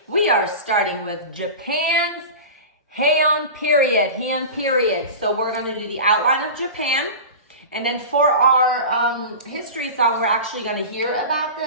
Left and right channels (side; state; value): both; inverted; correlation -0.30